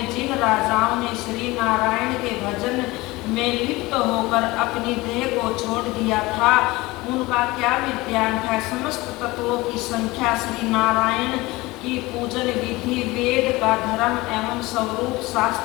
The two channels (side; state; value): right; quieter; 21.0 dB